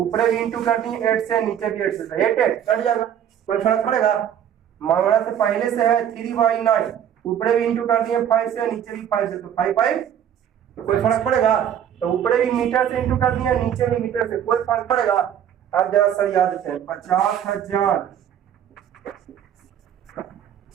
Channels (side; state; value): left; quieter; 9.6 dB